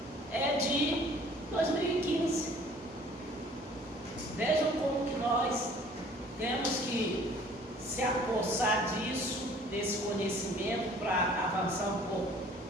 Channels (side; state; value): both; normal; correlation 0.53